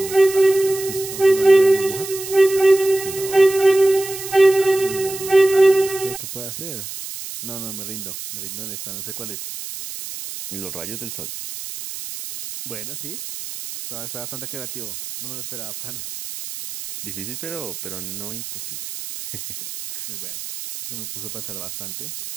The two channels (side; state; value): right; noise; hiss, 9 dB below the sound